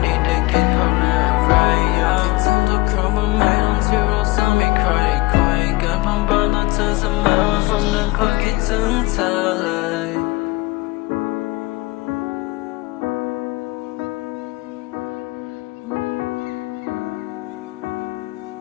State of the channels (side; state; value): right; quieter; 21.0 dB